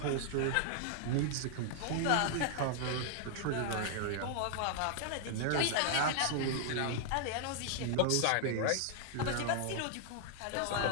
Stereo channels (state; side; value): different; both; correlation 0.00